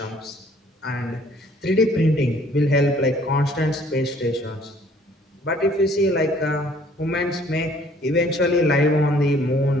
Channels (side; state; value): both; normal; correlation 0.58